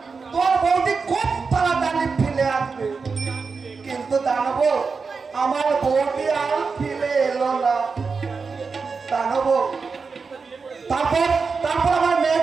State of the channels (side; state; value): left; quieter; 4.9 dB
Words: তোর বৌদি খুব তাড়াতাড়ি ফিরে আসবে কিন্তু জানবো আমার বৌদি আর ফিরে এলো না জানবো তারপর আমার